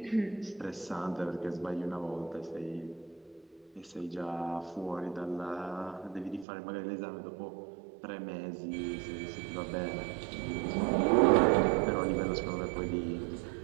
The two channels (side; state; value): left; drops out; at 6.5 s